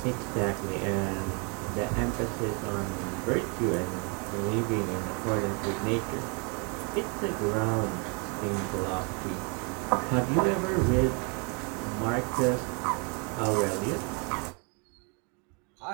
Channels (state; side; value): quieter; left; 34.3 dB